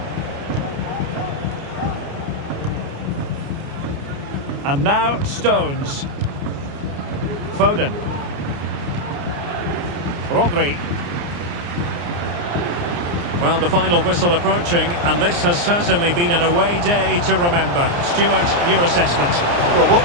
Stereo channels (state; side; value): late; left; 29 ms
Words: And now Stones. Foden. Rodri. Well, the final whistle approaching, and this has certainly been an away day to remember. Stuart, your assessment. Well, what